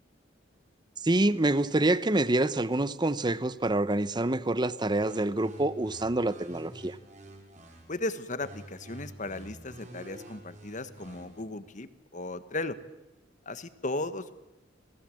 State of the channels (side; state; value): both; normal; correlation 0.61